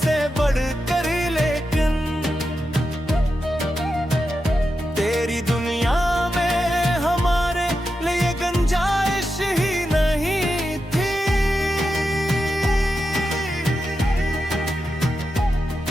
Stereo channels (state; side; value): normal; both; correlation 0.89